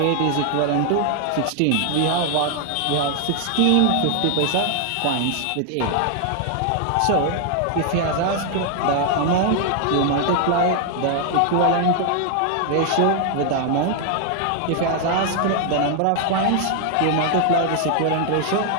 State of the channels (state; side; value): different; both; correlation 0.00